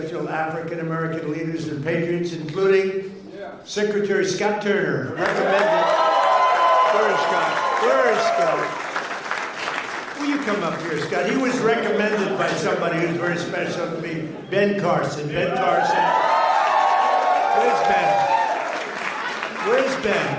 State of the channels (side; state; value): both; identical; correlation 1.00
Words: African-American leaders and patriots, including Secretary Scott Turner. Where is Scott? Where is Scott? Will you come up here, Scott? He was recommended by somebody who's very special to me, Ben Carson. Ben Carson. Where's Ben?